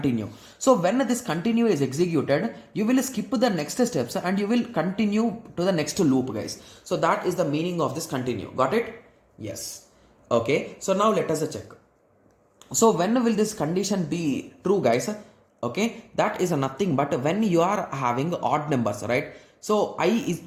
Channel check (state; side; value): identical; both; correlation 1.00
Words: So when this continue is executed, you will skip the next steps and you will continue to the next loop guys. So that is the meaning of this continue. Got it? Yes. Okay, so now let us check. So when will this condition be true guys? Okay, that is nothing but when you are having odd numbers, right? So I is